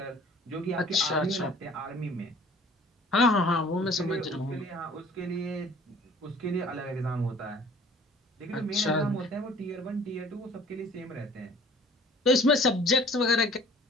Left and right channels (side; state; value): both; normal; correlation 0.51